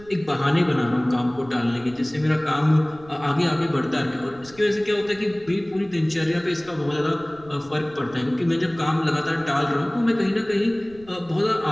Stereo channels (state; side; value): noise; right; rumble, 23 dB below the sound